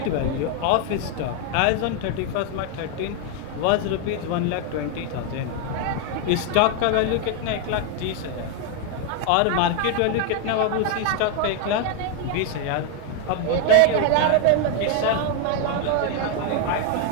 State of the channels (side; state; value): both; different; correlation 0.01